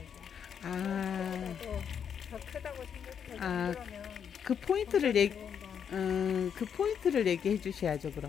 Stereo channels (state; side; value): quieter; right; 7.8 dB